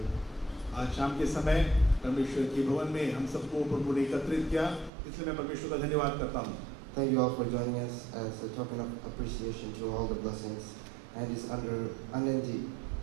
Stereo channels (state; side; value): drops out; left; at 4.9 s